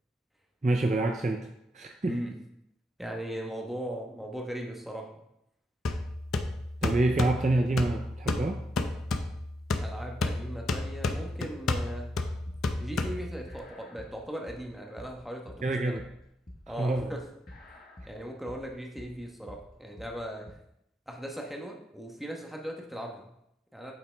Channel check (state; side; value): normal; both; correlation 0.82